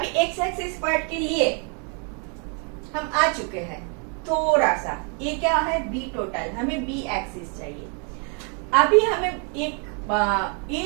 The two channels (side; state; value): left; quieter; 38.6 dB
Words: एक्स एक्सिस पार्ट के लिए हम आ चुके हैं. थोड़ा सा ये क्या है? बी टोटल, हमें बी एक्सिस चाहिए. अभी हमें एक